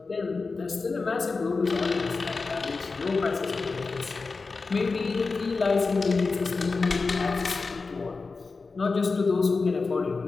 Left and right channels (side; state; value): right; quieter; 4.2 dB